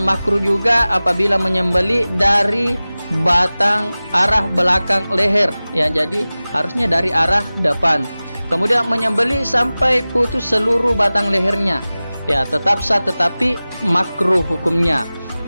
juga apabila menyembelih dari batang arah belakang leher. Ya, jadi harusnya dari arah depan. Kemudian menyembelih sampai putus seluruh batang lehernya. Ya, tetap sah tetapi makruh hukumnya.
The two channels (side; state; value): both; inverted; correlation -0.97